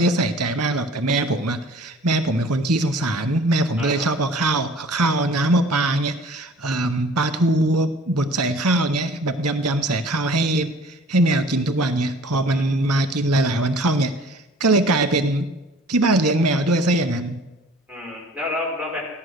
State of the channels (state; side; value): normal; both; correlation 0.49